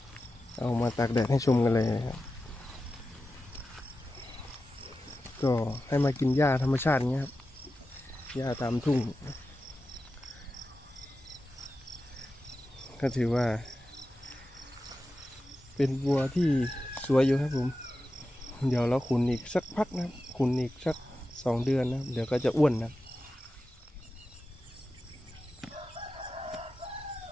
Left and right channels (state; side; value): normal; both; correlation 0.92